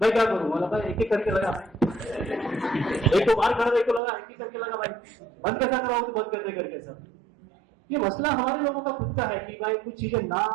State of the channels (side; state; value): left; drops out; at 4.0 s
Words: क्या करूं। बोला भाई एक एक करके लगा, एक तो बाहर खड़ा, एक तो लगा, एक करके लगा, भाई बंद कैसा कराओ, तो बंद कर दे करके सब। ये मसला हमारे लोगों का खुद का है कि भाई कुछ चीजें ना